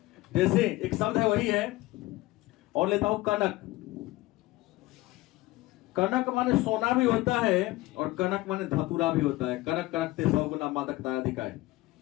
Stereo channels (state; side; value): quieter; right; 19.1 dB